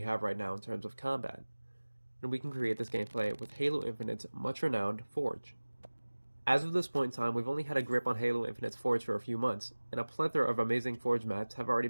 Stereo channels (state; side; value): inverted; both; correlation -1.00